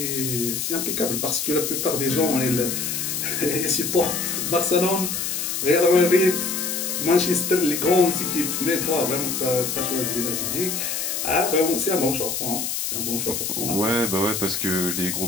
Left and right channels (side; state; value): left; noise; hiss, 2 dB below the sound